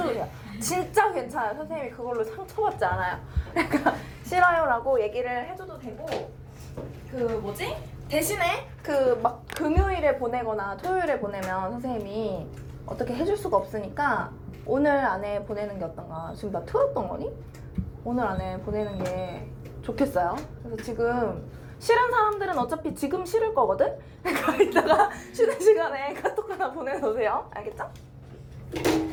돼요. 진짜 괜찮아요. 선생님이 그걸로 상처받지 않아요. 그러니까 싫어요 라고 얘기를 해줘도 되고, 대신에 막 금요일에 보내거나 토요일에 보내면 선생님이 어떻게 해줄 수가 없으니까 오늘 안에 보내는 게 어떤가. 지금 나 틀었던 거니? 오늘 안에 보내는 게 좋겠어요. 그래서 지금 싫은 사람들은 어차피 지금 싫을 거거든? 그러니까 이따가 쉬는 시간에 카톡 하나 보내놓으세요. 알겠죠?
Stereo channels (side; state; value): both; identical; correlation 1.00